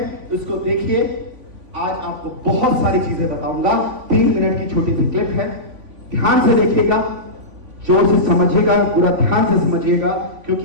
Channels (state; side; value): late; left; 3.5 ms